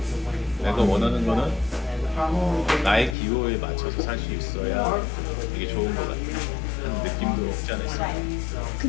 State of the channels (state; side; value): drops out; right; at 3.2 s